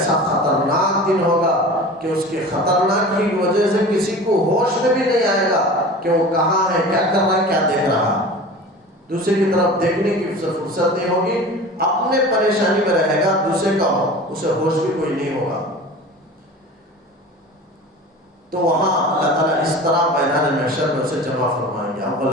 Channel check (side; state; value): both; normal; correlation 0.37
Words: خطرناک دن ہوگا کہ اس کے خطرناک کی وجہ سے کسی کو ہوش میں بھی نہیں آئے گا کہ وہ کہاں ہے، کیا کر رہا ہے، کیا دیکھ رہا ہے، دوسرے کی طرف دیکھنے کی فرصت نہیں ہوگی، اپنے پریشانی میں رہے گا، دوسرے کا اسے ہوش بھی کوئی نہیں ہوگا۔ تو وہاں اللہ تعالیٰ اس طرح میدان محشر میں اسے جمع فرمائیں گے